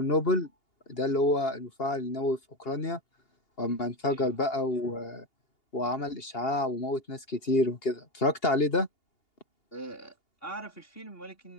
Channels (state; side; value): late; right; 2.8 ms